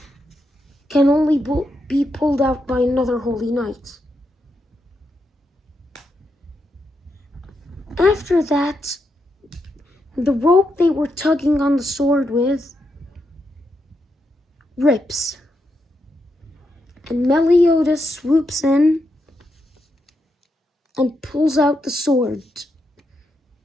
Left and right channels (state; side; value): normal; both; correlation 0.83